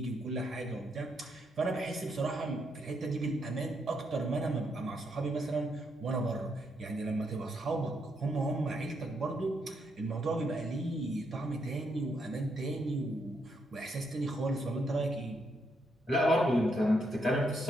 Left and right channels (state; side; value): normal; both; correlation 0.77